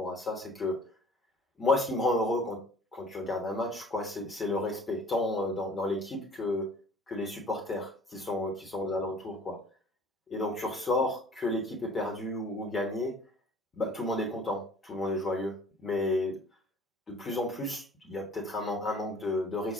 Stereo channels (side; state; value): both; normal; correlation 0.50